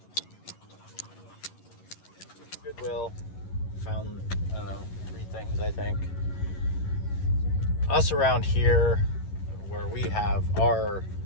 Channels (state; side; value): late; right; 11 ms